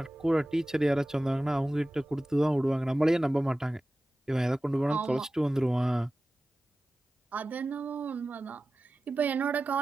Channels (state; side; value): normal; both; correlation 0.96